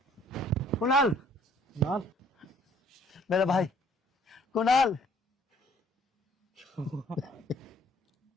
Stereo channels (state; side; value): normal; both; correlation 0.59